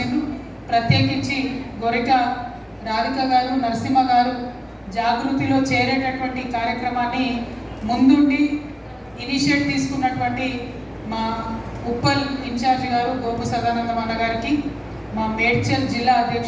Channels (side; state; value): both; identical; correlation 1.00